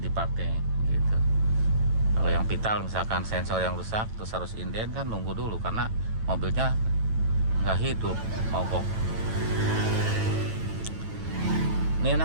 gitu. Kalau yang vital misalkan sensor yang rusak terus harus inden kan, nunggu dulu karena mobilnya nggak hidup, mogok. Ini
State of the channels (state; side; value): late; left; 9.1 ms